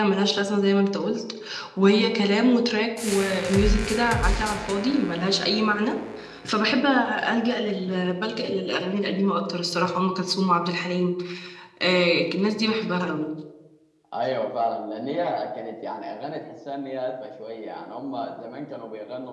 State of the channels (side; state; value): both; identical; correlation 1.00